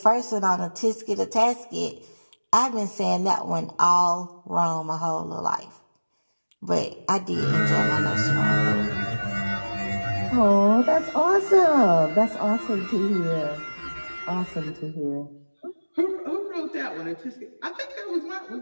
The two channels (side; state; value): both; inverted; correlation -1.00